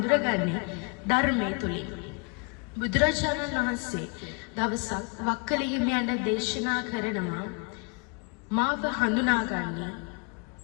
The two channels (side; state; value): right; quieter; 33.5 dB